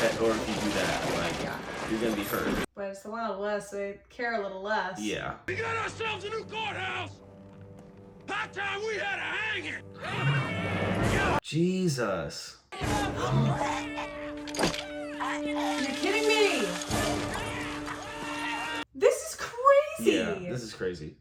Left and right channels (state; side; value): identical; both; correlation 1.00